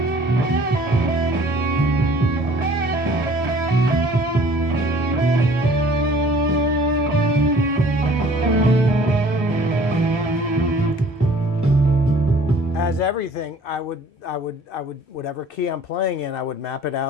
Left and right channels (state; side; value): normal; both; correlation 0.53